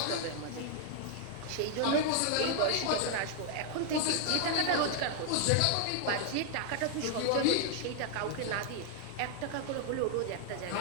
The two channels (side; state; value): both; different; correlation 0.00